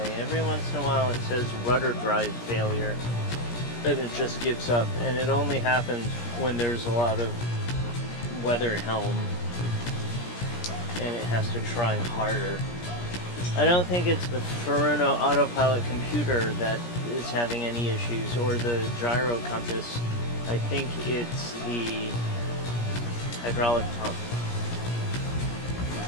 Every once in a while it says rudder drive failure, and it just gives up. And it only happens when there's a lot of weather helm and it has to try harder. I don't think it's the Furuno autopilot computer that is having any issues, or the gyro compass. I think it's the hydraulic pump.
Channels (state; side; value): late; right; 17 ms